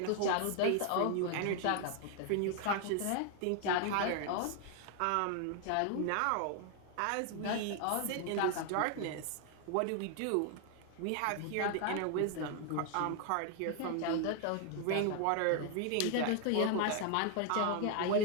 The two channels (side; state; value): both; different; correlation 0.00